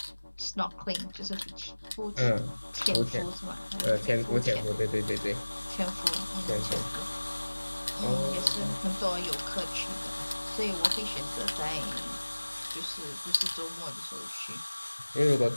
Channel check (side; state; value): both; inverted; correlation -1.00